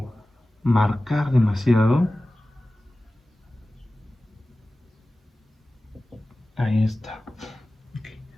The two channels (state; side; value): normal; both; correlation 0.96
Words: marcar demasiado. Ahí está. Okay.